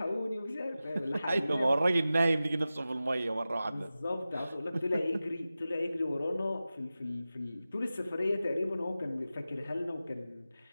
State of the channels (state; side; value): inverted; both; correlation -0.95